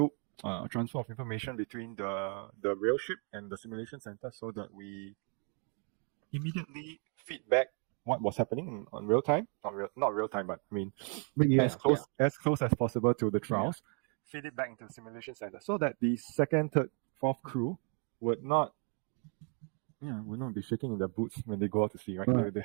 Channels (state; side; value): quieter; left; 38.8 dB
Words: transfer of information between the real ship and the simulation center, so that we immediately feedback what was happening on real time. Not real time, but I mean, as close as possible to the trials. Feed it back into the simulation center, so that the second, third, fourth crew would not be shaking in their boots when they go out to sea, right? Right.